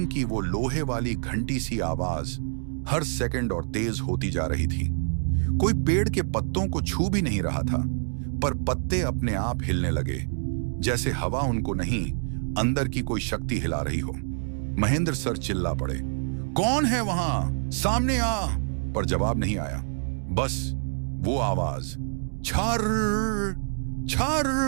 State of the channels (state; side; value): silent; left; digital silence